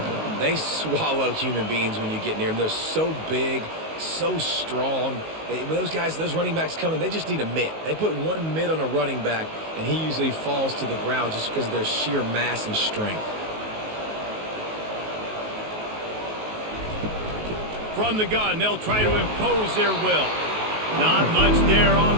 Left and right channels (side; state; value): left; late; 19 ms